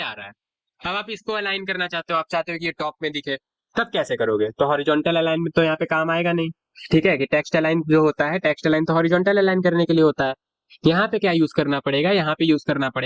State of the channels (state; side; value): identical; both; correlation 1.00